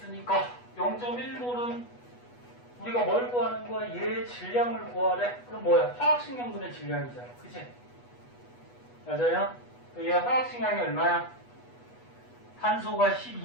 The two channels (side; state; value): right; late; 8.2 ms